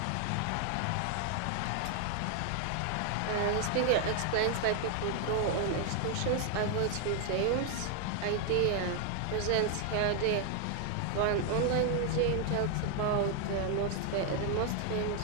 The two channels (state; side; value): different; both; correlation 0.00